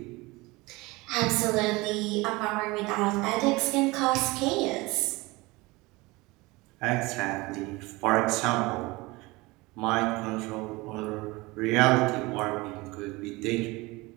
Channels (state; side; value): quieter; left; 22.8 dB